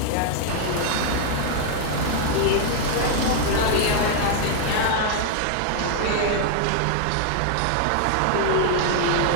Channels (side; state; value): both; different; correlation 0.00